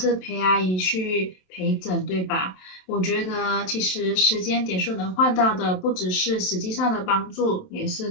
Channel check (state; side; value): late; right; 27 ms